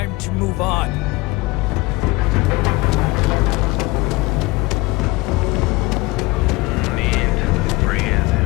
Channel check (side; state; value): right; quieter; 23.0 dB